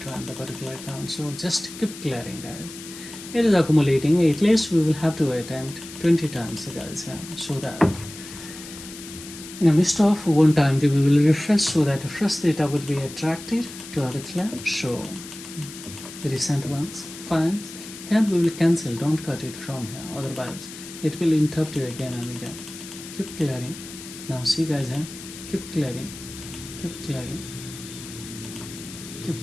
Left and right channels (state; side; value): noise; left; hiss, 14 dB below the sound